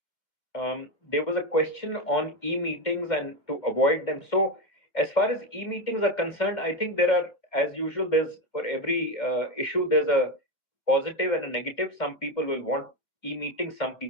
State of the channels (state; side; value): late; right; 2.3 ms